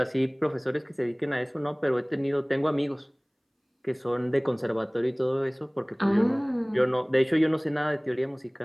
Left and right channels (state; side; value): identical; both; correlation 1.00